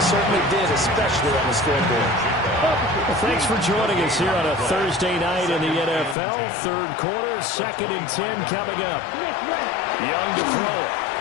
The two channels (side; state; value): right; drops out; at 6.2 s